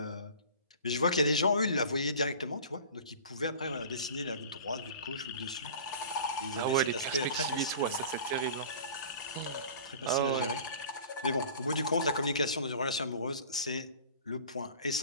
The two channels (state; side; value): inverted; both; correlation -0.41